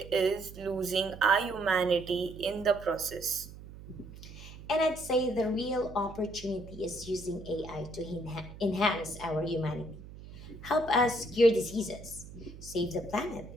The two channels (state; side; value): noise; right; hum, 15 dB below the sound